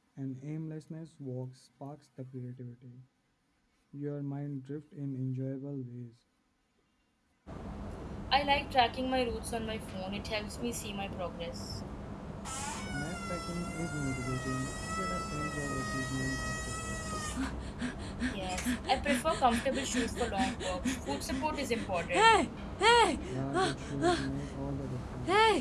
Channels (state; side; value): identical; both; correlation 1.00